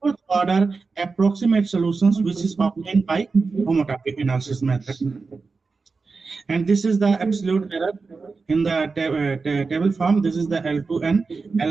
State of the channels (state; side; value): quieter; left; 4.4 dB